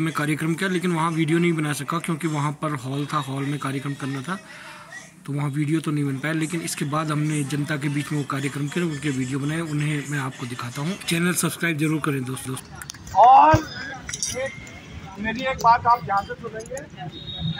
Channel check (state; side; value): identical; both; correlation 1.00